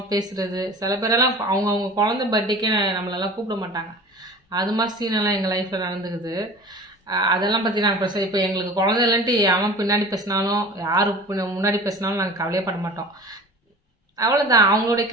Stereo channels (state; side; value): normal; both; correlation 0.40